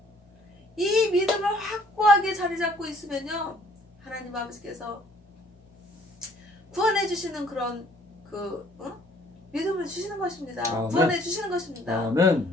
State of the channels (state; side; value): normal; both; correlation 0.60